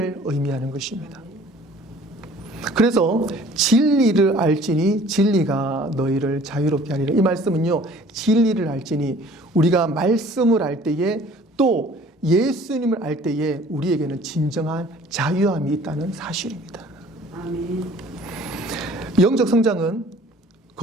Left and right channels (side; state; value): both; normal; correlation 0.52